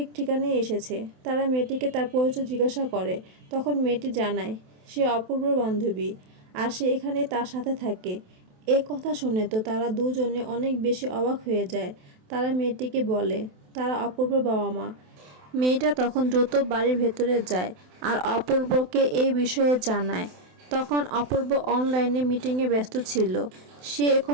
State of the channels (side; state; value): left; late; 27 ms